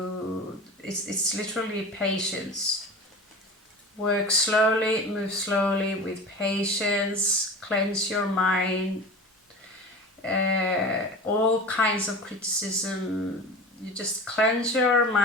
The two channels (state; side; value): normal; both; correlation 0.34